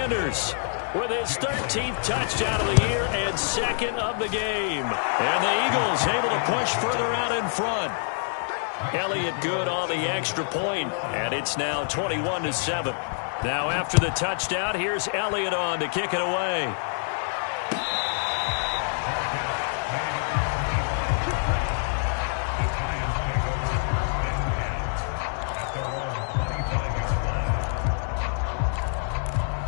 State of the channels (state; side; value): silent; right; digital silence